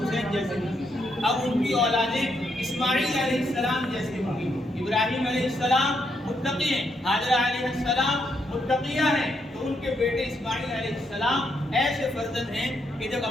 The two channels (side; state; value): both; normal; correlation 0.78